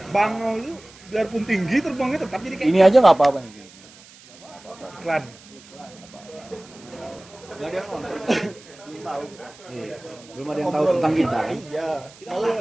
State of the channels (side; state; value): right; noise; hiss, 23 dB below the sound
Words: bangau itu biarpun tinggi terbangnya tetap jadi kayak ini aja nggak apa-apa nih. iklan. nggak ada yang nonton. Belum tahu. Iya. Belum ada yang tahu tentang kita kan? Iya.